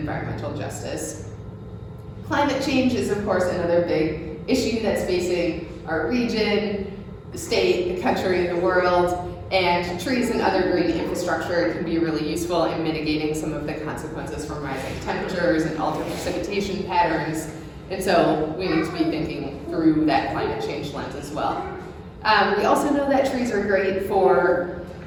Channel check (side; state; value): both; identical; correlation 1.00